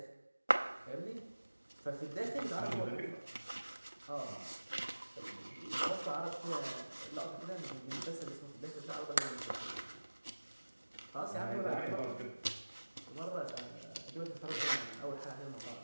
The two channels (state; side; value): inverted; both; correlation -1.00